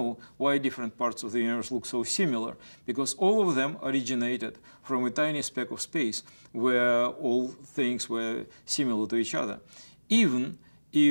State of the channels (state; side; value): inverted; both; correlation -1.00